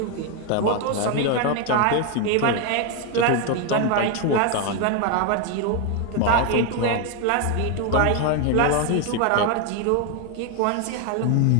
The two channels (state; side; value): different; both; correlation 0.01